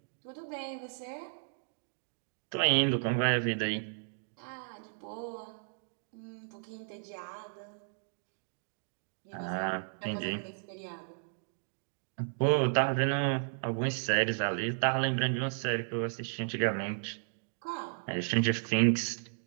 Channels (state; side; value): silent; left; digital silence